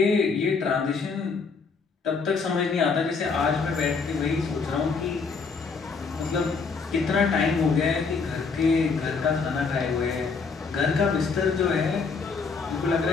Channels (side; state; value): right; quieter; 4.9 dB